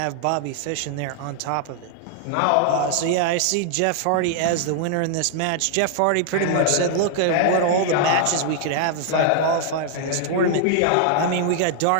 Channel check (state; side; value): different; both; correlation 0.00